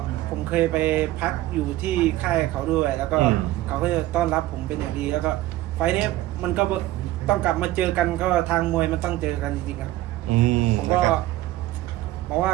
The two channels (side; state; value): left; quieter; 16.2 dB